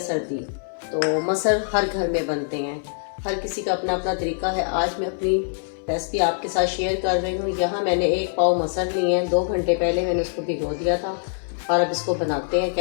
सर्दी तो मसर हर घर में बनते हैं, हर किसी का अपना अपना तरीका है। आज मैं अपनी रेसिपी आपके साथ शेयर कर रही हूँ। यहाँ मैंने 1 पाव मसर लिए हैं, 2 घंटे पहले मैंने इसको भिगो दिया था और अब इसको बनाते हैं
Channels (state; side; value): silent; right; 63 dB below the other